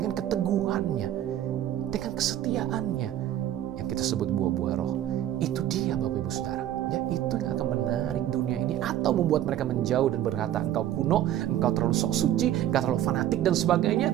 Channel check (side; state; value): left; quieter; 12.0 dB